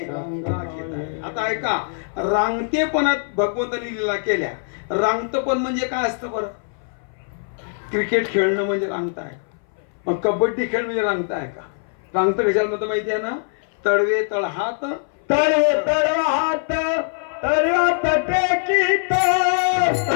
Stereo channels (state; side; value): silent; right; 60 dB below the other